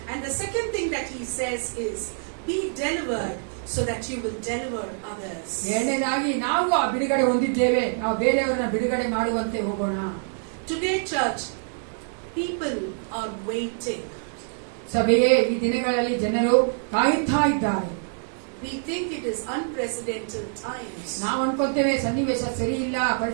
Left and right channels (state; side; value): silent; left; digital silence